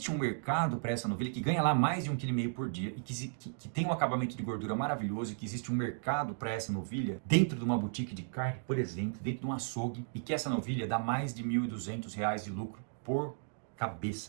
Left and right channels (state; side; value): silent; left; digital silence